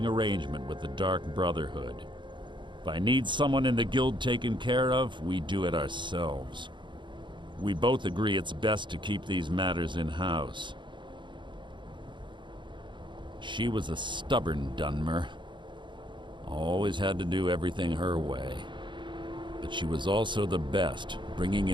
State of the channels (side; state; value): left; late; 0.23 ms